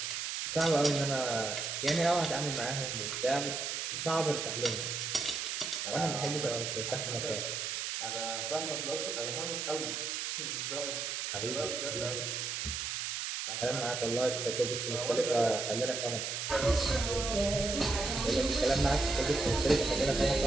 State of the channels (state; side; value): noise; right; hiss, 3 dB below the sound